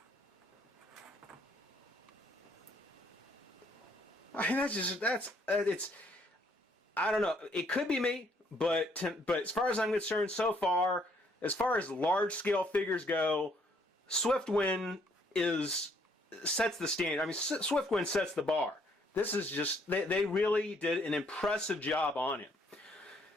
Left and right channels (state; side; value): normal; both; correlation 0.67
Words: I mean, it's, I don't know, it could be me, but as far as I'm concerned so far, as far as large scale figures go, Swiftwind sets the standard. I mean, Swiftwind sets the bar. This is just, they really did an impressive job on him.